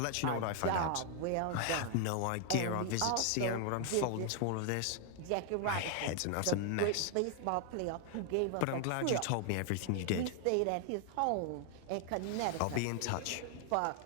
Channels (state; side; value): different; both; correlation 0.00